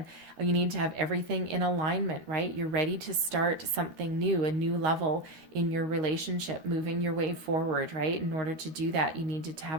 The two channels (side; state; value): left; late; 13 ms